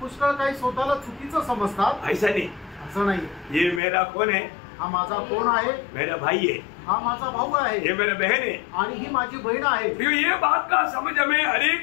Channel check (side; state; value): right; drops out; at 3.8 s